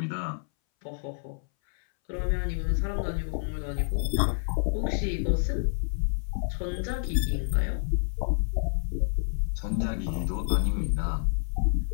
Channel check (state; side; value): silent; right; 59 dB below the other